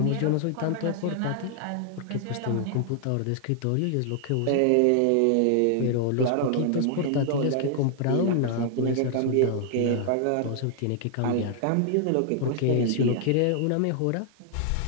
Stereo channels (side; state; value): both; different; correlation 0.00